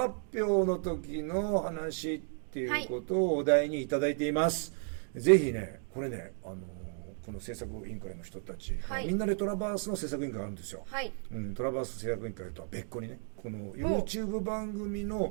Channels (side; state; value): left; silent; 55 dB below the other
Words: 表の時の話っていうことをお題にいただいています。ぜひね、これね、この制作委員会の人たち、みんなでトラバースの制作委員会があるんですよ。トラバース制作委員会とは別個にね、この YouTube 番組